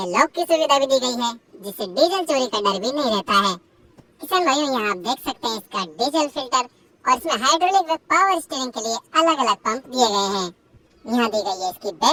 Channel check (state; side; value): identical; both; correlation 1.00